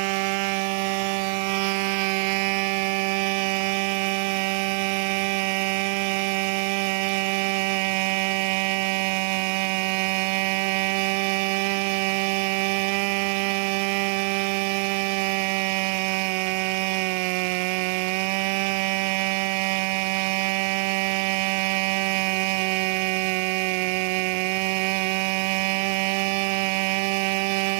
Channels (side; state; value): left; silent; 62 dB below the other